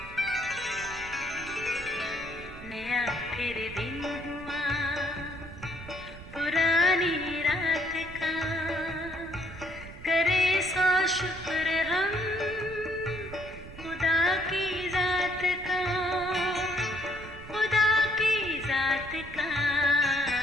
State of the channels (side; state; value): right; noise; rumble, 15 dB below the sound